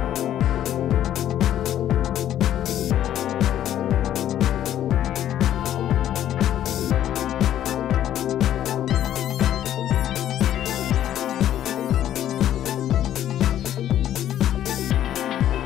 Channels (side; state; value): right; quieter; 11.5 dB